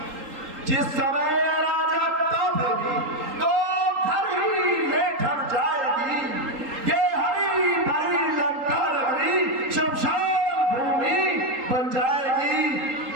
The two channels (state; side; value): late; left; 3.8 ms